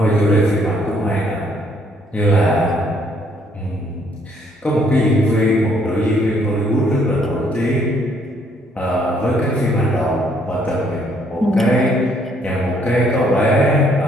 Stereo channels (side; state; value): both; normal; correlation 0.67